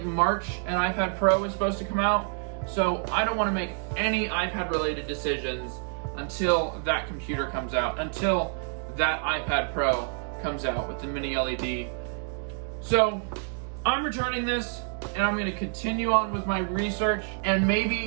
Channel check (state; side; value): silent; left; 60 dB below the other